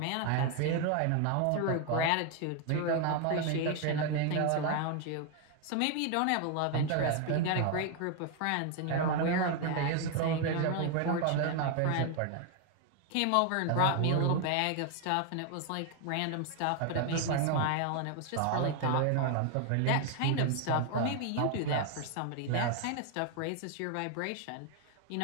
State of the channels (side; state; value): both; different; correlation 0.01